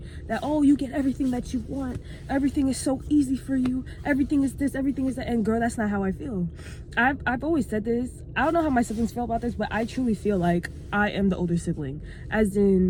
that, oh, you get everything that you want, everything is so easy for you, everything is this, everything is that. And girl, that's not how I feel. I've always said this. I don't know how my siblings feel about this, but I truly feel like I am the older sibling, as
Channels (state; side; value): identical; both; correlation 1.00